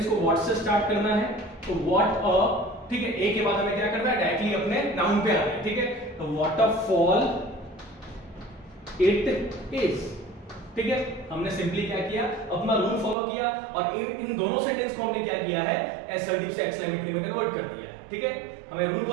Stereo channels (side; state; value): left; drops out; at 13.2 s